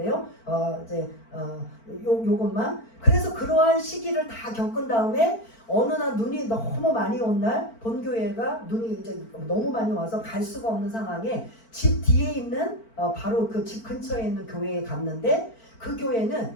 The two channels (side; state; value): right; late; 4.5 ms